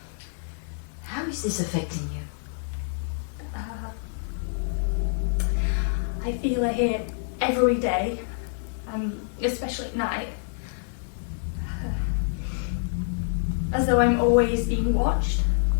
How is this affecting you? I feel her here every day, especially at night. As though I'm always being watched.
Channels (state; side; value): silent; right; 59 dB below the other